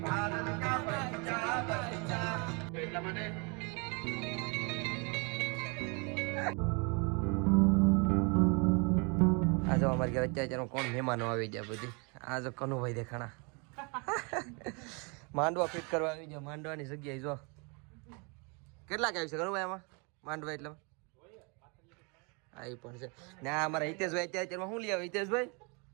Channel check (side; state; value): left; quieter; 32.2 dB